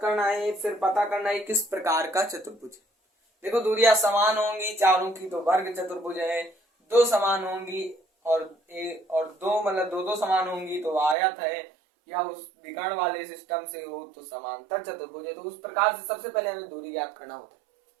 करना है, फिर पता करना है किस प्रकार का चतुर्भुज है। देखो, दूरियां समान होंगी चारों की तो वर्ग चतुर्भुज है, दो समान होंगी और दो मतलब दो समान होंगी तो आयत है, या उस विकर्ण वाले सिस्टम से हो तो समांतर चतुर्भुज है। तो उस प्रकार से सबसे पहले हमें दूरी ज्ञात करना होता है।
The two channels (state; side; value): drops out; left; at 11.2 s